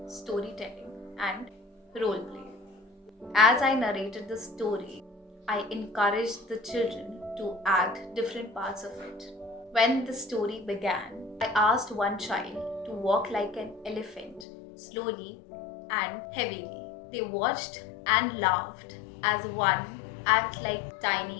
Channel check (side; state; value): right; drops out; at 14.5 s